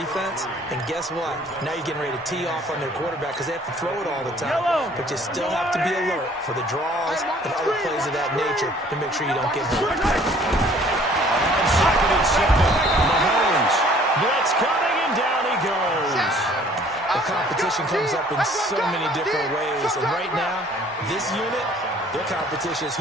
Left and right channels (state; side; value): normal; both; correlation 0.56